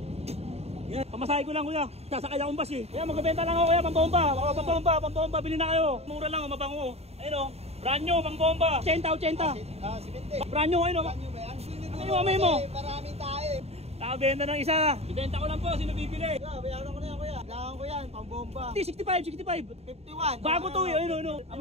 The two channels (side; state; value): left; late; 0.30 ms